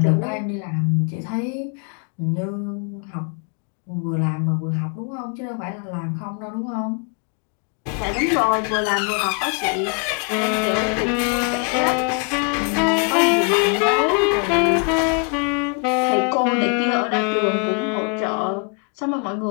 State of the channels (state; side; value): quieter; right; 38.1 dB